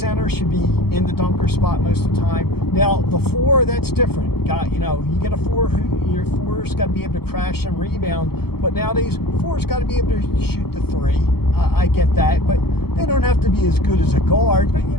should be in the dunker spot most of the time. Now, the four, that's different. You get a four, your four's got to be able to crash and rebound, but nowadays, four's got to be able to shoot the three. I get that, but they don't have to be as good as a guard, but,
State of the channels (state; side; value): late; right; 0.96 ms